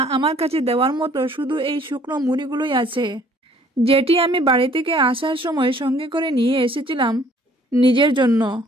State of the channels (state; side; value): normal; both; correlation 0.58